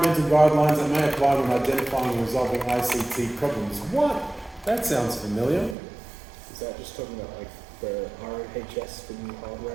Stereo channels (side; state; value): left; drops out; at 5.8 s